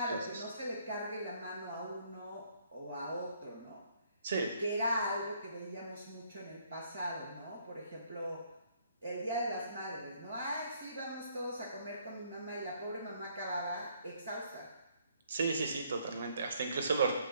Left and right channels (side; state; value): both; inverted; correlation -0.66